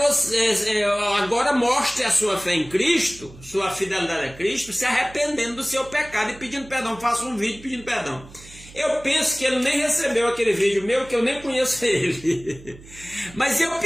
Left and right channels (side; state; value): right; noise; hum, 20 dB below the sound